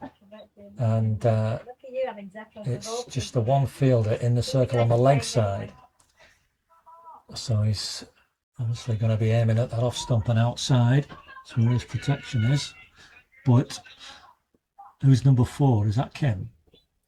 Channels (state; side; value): identical; both; correlation 1.00